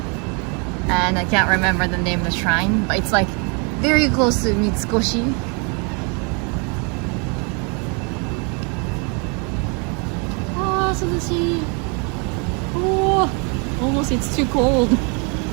And I can't remember the name of the shrine, but it's like very close to Mitsukoshi. Oh, almost it's too cold.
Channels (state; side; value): quieter; left; 34.7 dB